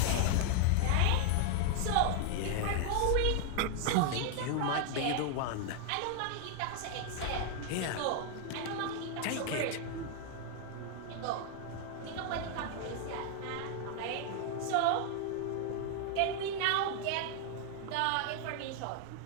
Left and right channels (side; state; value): both; different; correlation 0.00